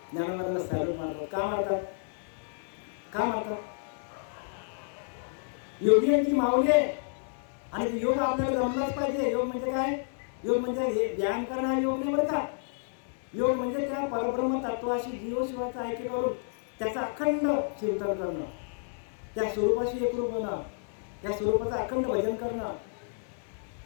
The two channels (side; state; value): right; silent; digital silence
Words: ज्ञानोबाला सॅल्यूट मारतात. का मारतात? का मारतात? योगियांची माऊली आहे, आणि योग आपल्याला जमलाच पाहिजे. योग म्हणजे काय? योग म्हणजे हे ध्यान करणं हा योग नाही बरं का. योग म्हणजे त्या परब्रह्म तत्वाशी जीवशिवाचं ऐक्य करून त्याचं अखंड चिंतन करणं, त्या स्वरूपाशी एकरूप होणं, त्या स्वरूपाचं अखंड भजन करणं,